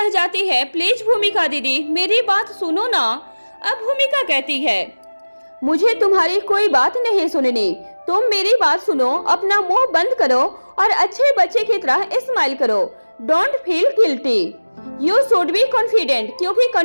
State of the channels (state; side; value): inverted; both; correlation -1.00